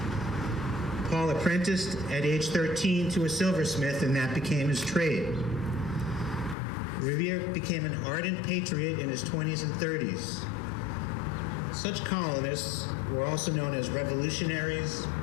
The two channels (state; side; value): drops out; right; at 6.6 s